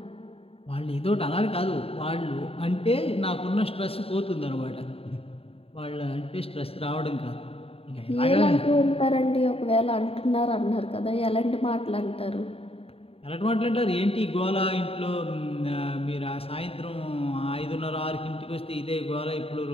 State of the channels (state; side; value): late; right; 0.28 ms